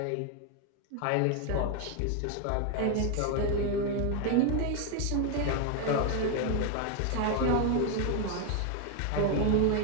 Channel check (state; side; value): different; both; correlation 0.01